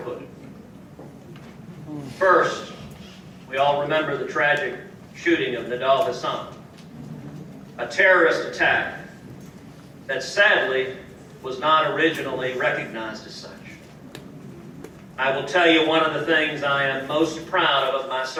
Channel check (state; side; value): identical; both; correlation 1.00